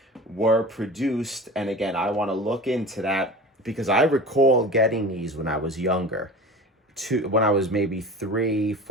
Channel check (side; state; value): both; normal; correlation 0.35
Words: were produced. And again, I want to look into that because I recall getting these when I was younger, when I was maybe 3,